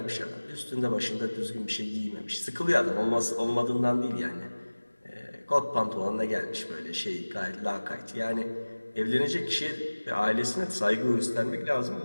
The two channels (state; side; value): inverted; both; correlation -1.00